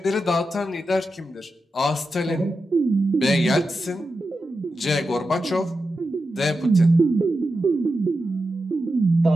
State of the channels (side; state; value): both; normal; correlation 0.90